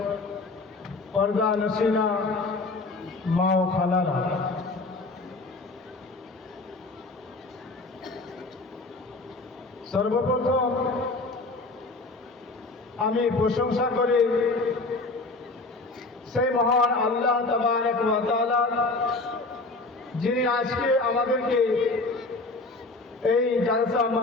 পর্দা নসিনা মা ও খালারা, সর্বপ্রথম আমি প্রশংসা করি সেই মহান আল্লাহ তাবারক ওয়া তাআলা, যিনি আজকে আমাদেরকে এই জালসা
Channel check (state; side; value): quieter; right; 3.3 dB